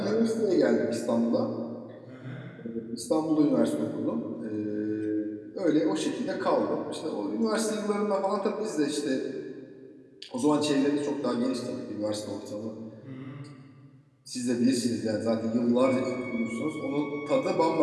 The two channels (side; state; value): both; identical; correlation 1.00